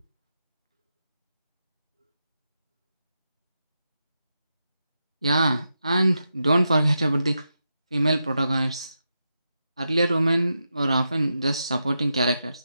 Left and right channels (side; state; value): both; inverted; correlation -0.87